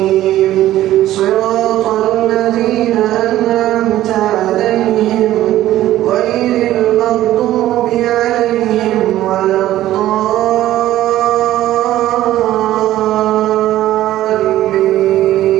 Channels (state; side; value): quieter; left; 14.0 dB